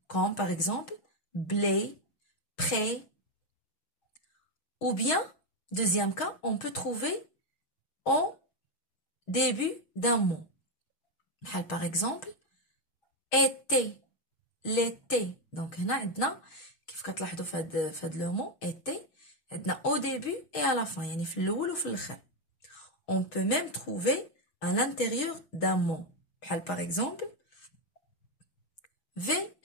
comme par exemple blé, prêt. Ou bien, deuxième cas, on peut trouver au début d'un mot. Par exemple, été, l'été. Donc, هنا عندنا كيف كتلاحظوا في هاد لو مو été عندنا au début et à la fin يعني في الأول وفي الآخر. On peut même trouver à l'intérieur d'un mot. Par exemple,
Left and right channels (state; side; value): late; right; 6.4 ms